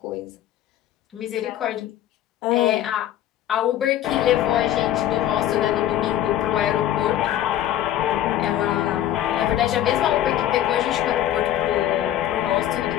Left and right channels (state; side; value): quieter; right; 12.1 dB